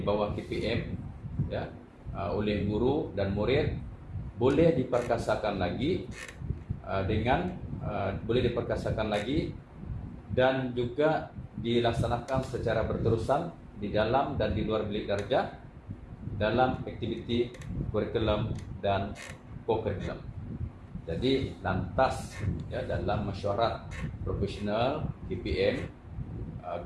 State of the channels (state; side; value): identical; both; correlation 1.00